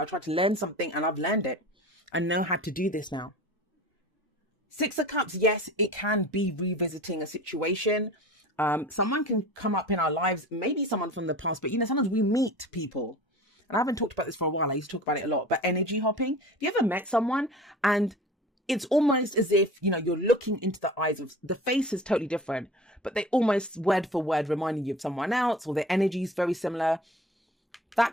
I tried to learn something and I've learned it. I know how to do this now. Six of Cups, yes, it can be revisiting a situation. Someone can come up in our lives, maybe someone from the past, but you know, sometimes we meet people, and I haven't talked about this for a while. I used to talk about it a lot, but energy hopping. Have you ever met someone and it's almost as if, you know, you're looking into the eyes of the face is totally different, but they almost word for word reminding you of someone else, or their energy is very similar.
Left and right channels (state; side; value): normal; both; correlation 0.39